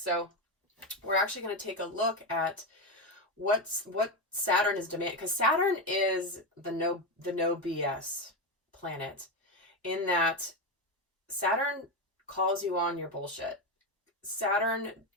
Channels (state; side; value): normal; both; correlation 0.12